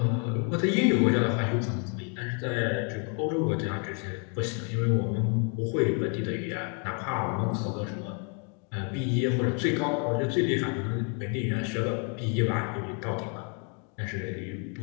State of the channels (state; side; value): quieter; right; 38.9 dB